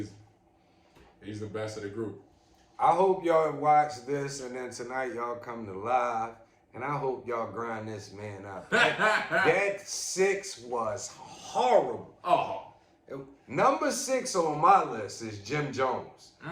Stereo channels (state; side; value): identical; both; correlation 1.00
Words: He's the best of the group. I hope y'all watch this and then tonight y'all come to live. And I hope y'all grind this man up. That 6 was horrible. Oh. Number 6 on my list is Jim Jones.